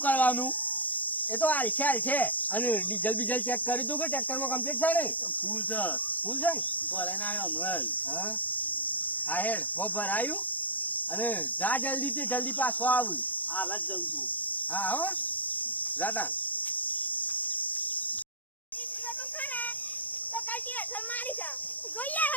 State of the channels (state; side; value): late; right; 0.082 ms